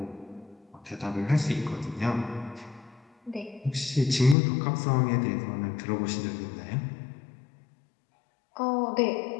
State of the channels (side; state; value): right; drops out; at 4.4 s